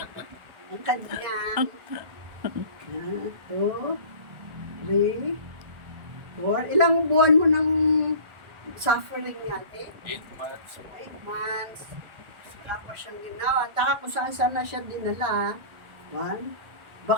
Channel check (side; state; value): left; late; 1.4 ms